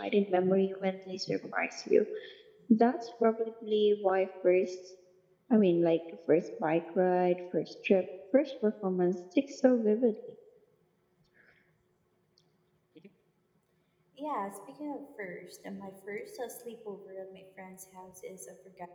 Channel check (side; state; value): both; identical; correlation 1.00